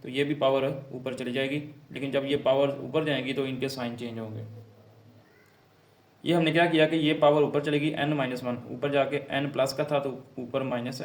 तो ये भी पावर ऊपर चली जाएगी। लेकिन जब ये पावर ऊपर जाएगी तो इनके साइन चेंज होंगे। ये हमने क्या किया कि ये पावर ऊपर चलेगी n-1, ऊपर जाके n प्लस का था तो ऊपर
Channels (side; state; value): both; identical; correlation 1.00